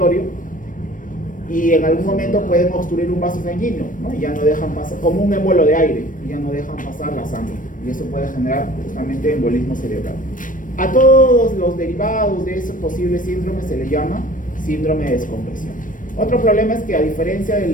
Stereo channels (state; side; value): late; right; 0.38 ms